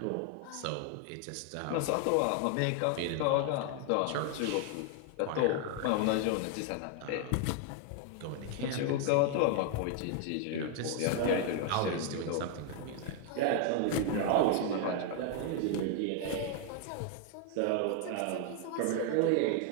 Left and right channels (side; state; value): both; different; correlation 0.00